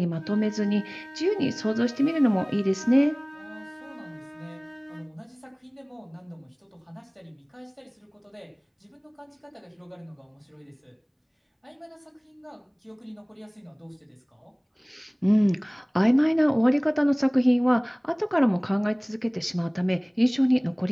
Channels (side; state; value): both; identical; correlation 1.00